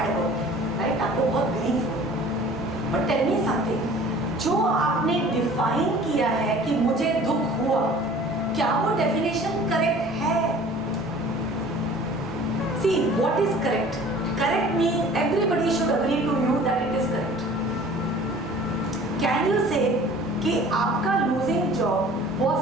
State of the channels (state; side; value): normal; both; correlation 0.47